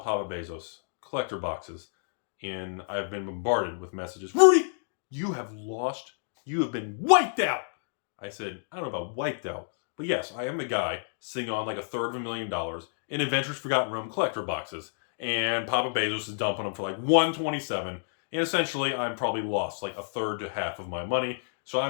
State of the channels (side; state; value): right; silent; digital silence